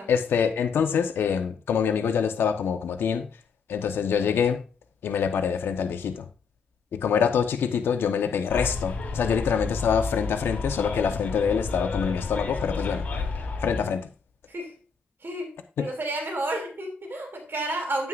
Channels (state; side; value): quieter; right; 5.7 dB